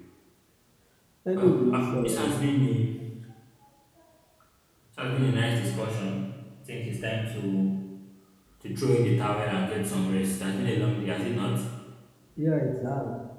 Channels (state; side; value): identical; both; correlation 1.00